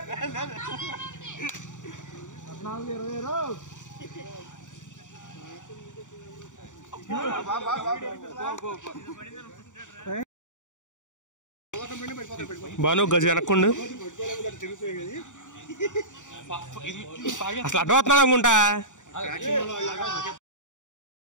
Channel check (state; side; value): late; right; 0.86 ms